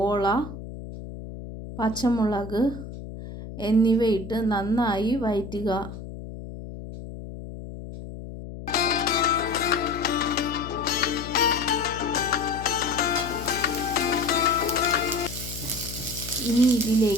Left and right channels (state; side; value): noise; left; hum, 11 dB below the sound